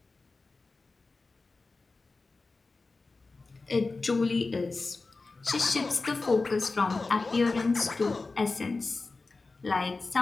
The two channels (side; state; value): right; quieter; 3.7 dB